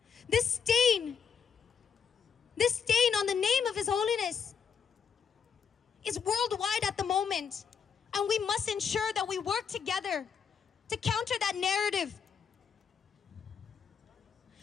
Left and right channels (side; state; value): right; quieter; 6.9 dB